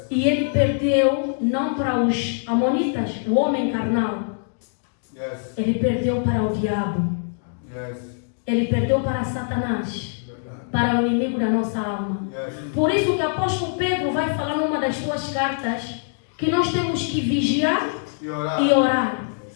E ele perdeu não para os amonitas, o homem carnal. Ele perdeu para o diabo. Ele perdeu para Satanás, para o inimigo da nossa alma. Por isso que o apóstolo Pedro vai falar numa das suas cartas que nós temos que vigiar e orar.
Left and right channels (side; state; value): right; silent; digital silence